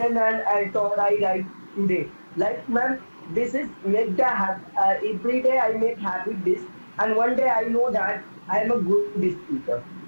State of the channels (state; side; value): inverted; both; correlation -1.00